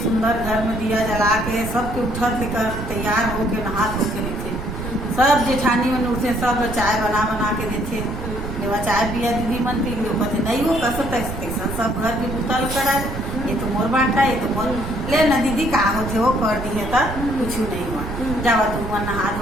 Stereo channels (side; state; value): right; noise; rumble, 7 dB below the sound